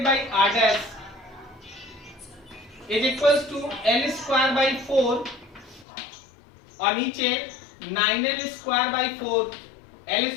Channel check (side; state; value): right; drops out; at 5.9 s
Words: by R' is equals to L²/4 और नीचे 9L²/4,